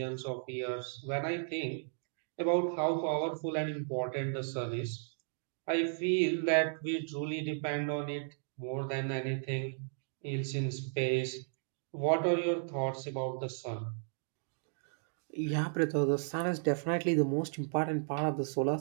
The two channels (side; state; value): left; silent; digital silence